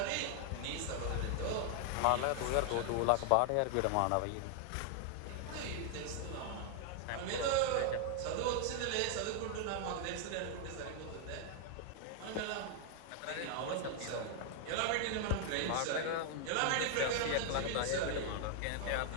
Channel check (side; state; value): both; different; correlation 0.00